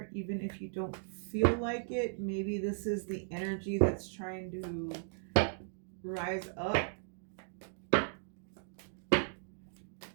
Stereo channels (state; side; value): silent; left; digital silence